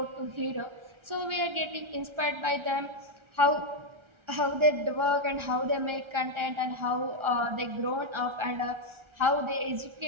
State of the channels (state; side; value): late; left; 1.3 ms